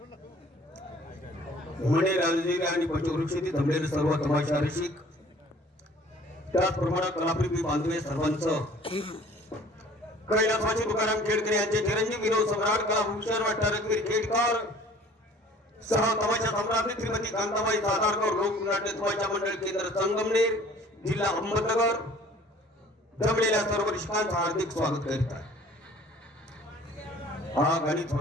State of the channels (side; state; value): both; normal; correlation 0.51